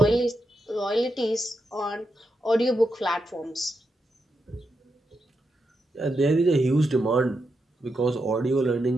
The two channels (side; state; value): both; normal; correlation 0.85